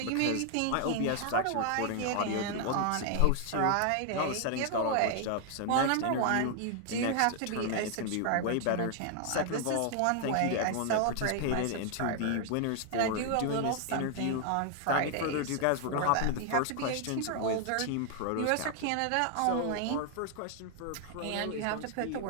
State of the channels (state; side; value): different; both; correlation 0.00